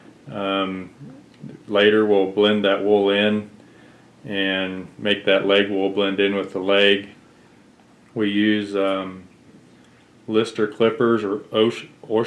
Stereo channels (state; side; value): identical; both; correlation 1.00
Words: Later we'll blend that wool in and make that leg wool blend in with the leg. We use Lister clippers or